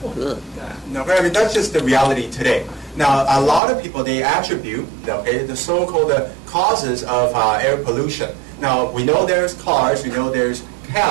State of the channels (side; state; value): left; drops out; at 3.6 s